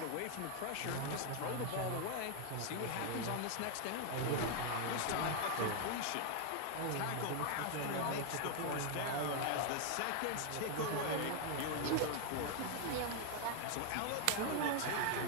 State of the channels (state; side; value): different; both; correlation 0.00